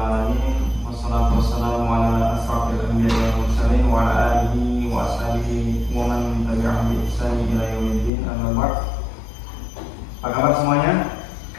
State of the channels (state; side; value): drops out; right; at 8.1 s